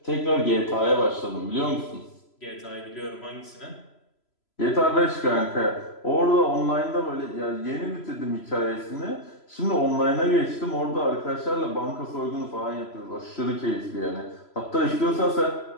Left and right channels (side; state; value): right; late; 3.0 ms